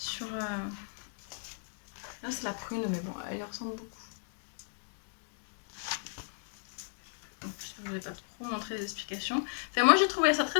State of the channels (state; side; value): silent; right; digital silence